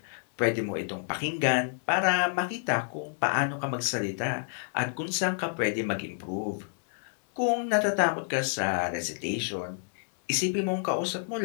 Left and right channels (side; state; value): right; silent; digital silence